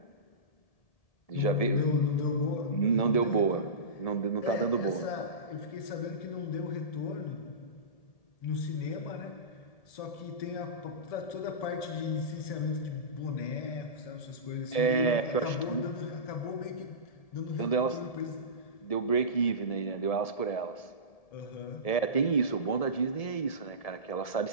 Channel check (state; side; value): late; right; 1.7 ms